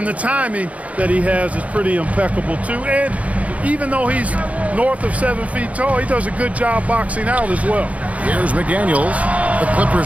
the timing that he has is pretty impeccable too. And even though he's north of 7 feet tall, he does a good job boxing out as well. Here's McDaniels. The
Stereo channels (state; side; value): late; left; 0.067 ms